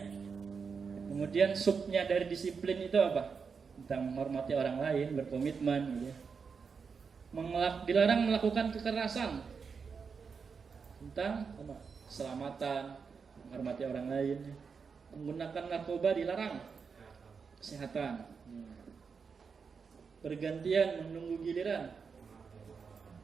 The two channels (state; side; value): quieter; left; 5.6 dB